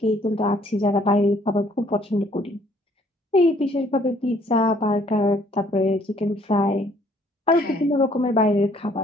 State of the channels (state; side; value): normal; both; correlation 0.62